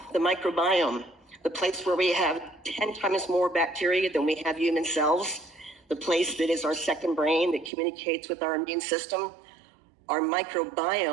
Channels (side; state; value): left; drops out; at 7.7 s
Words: the microbiome, the place where we have 10 times more bacteria than we have human cells, the place that is our second brain that communicates with our immune system, our